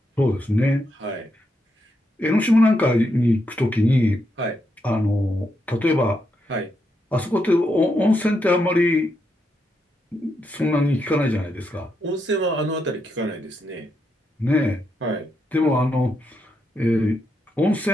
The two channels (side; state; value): both; normal; correlation 0.82